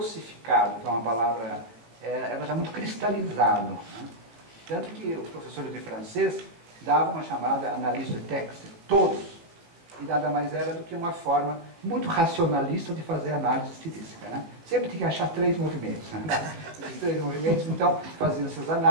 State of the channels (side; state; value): left; late; 18 ms